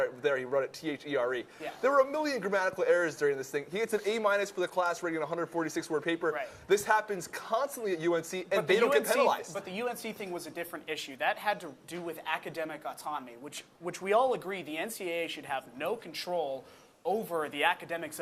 He wrote it T-H-E-R-E. Yeah. There were a million grammatical errors during this thing. He gets an A- for the class rating on a 146-word paper. Right. This happens constantly at UNC, and they don't get penalized. But the UNC thing was a different issue. That had to do with academic autonomy, which we all agree the NCAA should have no control over the academics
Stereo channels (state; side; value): identical; both; correlation 1.00